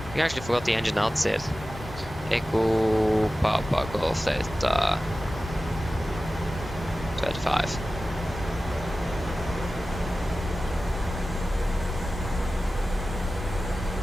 We actually forgot the engine outside. Echo Papa Golf Delta 25.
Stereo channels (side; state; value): both; normal; correlation 0.95